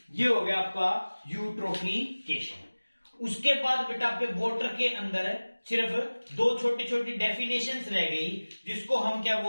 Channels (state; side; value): inverted; both; correlation -1.00